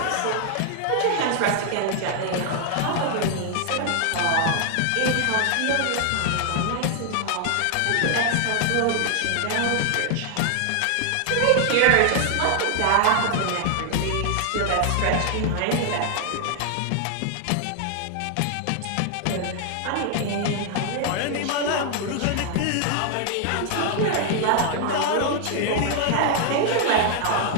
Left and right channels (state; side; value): different; both; correlation 0.00